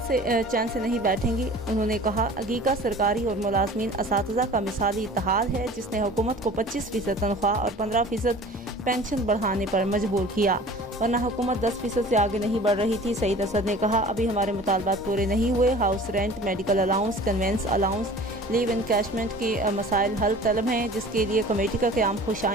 से नहीं बैठेंगी। उन्होंने कहा, अगीका सरकारी और मुलाजमीन असातिज़ा का मिसाली इत्तेहाद है जिसने हुकूमत को 25% तनख्वाह और 15% पेंशन बढ़ाने पर मजबूर किया, वरना हुकूमत 10% से आगे नहीं बढ़ रही थी। सईद असद ने कहा, अभी हमारे मुतालबात पूरे नहीं हुए। House rent, medical allowance, convince allowance, leave encashment के मसाइल हल तलब हैं, जिसके लिए कमेटी का क़याम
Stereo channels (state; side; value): normal; both; correlation 0.44